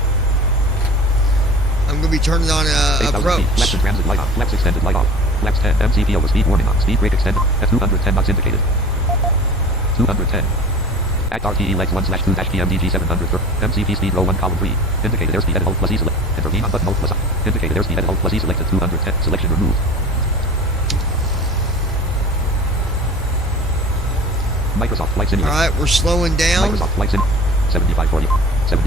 I'm going to be turning on 8,000 approach. feet. Flaps and transit light on. Flaps extended light off. Flaps 10. MCP over speed warning on. Speed brake extended. At 210 knots indicated. 210. Act RTE legs 1/2-PMDG 700 MCP speed row 1 column 3. Indicated airspeed edit Alt plus E select. Intervene on button Alt plus I. Indicated airspeed edit Alt plus E selected 210. Selection removed. Microsoft Flight Simulator. Alright, we're slowing down. Microsoft Flight Sim. 7540.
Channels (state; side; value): normal; both; correlation 0.40